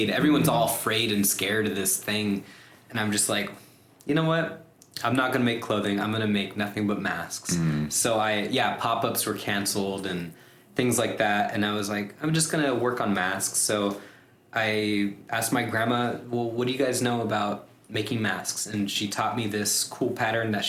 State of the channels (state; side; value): identical; both; correlation 1.00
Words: Everyone's all afraid and scared of this thing. And I'm just like, you know what? I'm not going to make clothing. I'm going to make nothing but masks. So pop-ups were canceled and things like that. And I was like, I'm just going to work on masks. So I asked my grandma, well, what do you guys know about making masks? And she taught me this cool pattern that